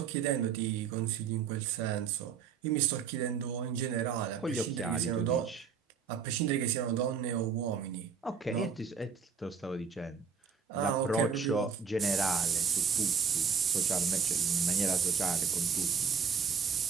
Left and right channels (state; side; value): quieter; left; 6.3 dB